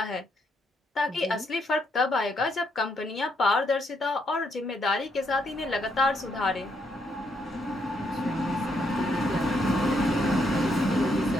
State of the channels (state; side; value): normal; both; correlation 0.75